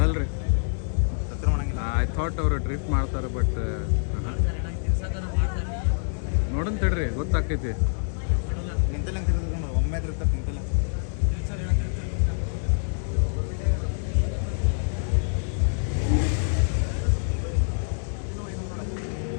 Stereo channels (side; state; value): right; silent; digital silence